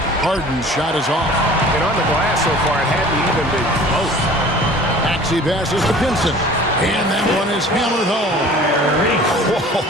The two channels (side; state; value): both; normal; correlation 0.46